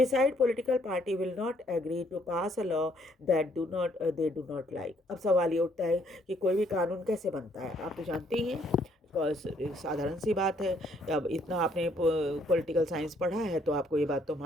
political party will not agree to pass a law that they do not like. अब सवाल ये उठता है कि कोई भी कानून कैसे बनता है, आप तो जानते ही हैं. साधारण सी बात है. अब इतना आपने पॉलिटिकल साइंस पढ़ा है तो आपको ये बात तो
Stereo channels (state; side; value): normal; both; correlation 0.67